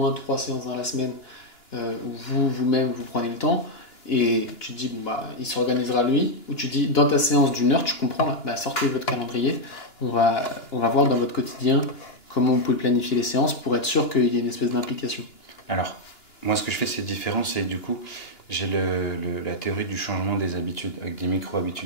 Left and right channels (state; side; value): late; right; 2.9 ms